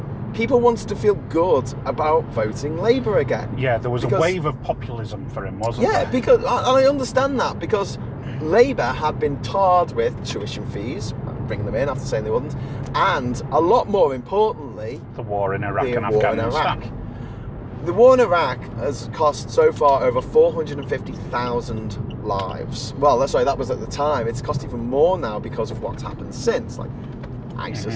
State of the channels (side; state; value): both; identical; correlation 1.00